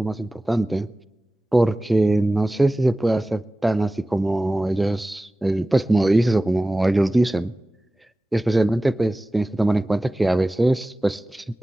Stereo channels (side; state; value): both; normal; correlation 0.97